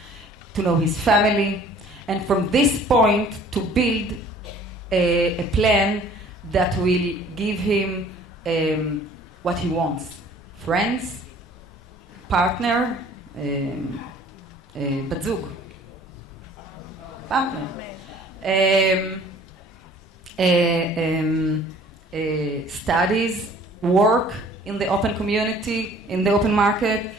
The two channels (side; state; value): both; normal; correlation 0.52